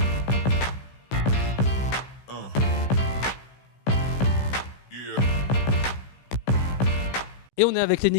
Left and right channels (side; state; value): right; late; 16 ms